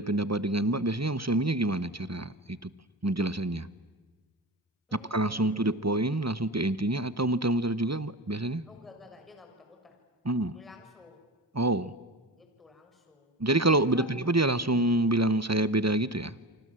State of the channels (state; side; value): normal; both; correlation 0.28